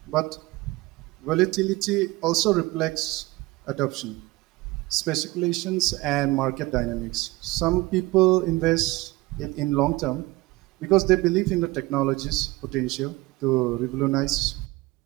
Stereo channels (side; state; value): left; quieter; 20.9 dB